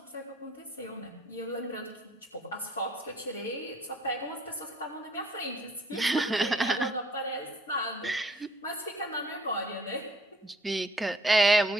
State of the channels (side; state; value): both; normal; correlation 0.60